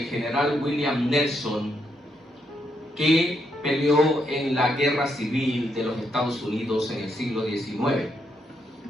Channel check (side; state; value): both; normal; correlation 0.78